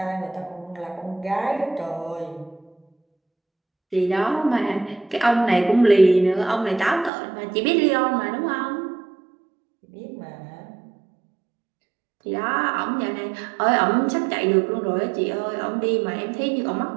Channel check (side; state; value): left; drops out; at 7.1 s